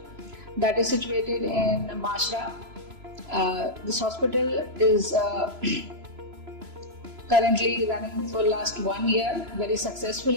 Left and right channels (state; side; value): late; left; 3.0 ms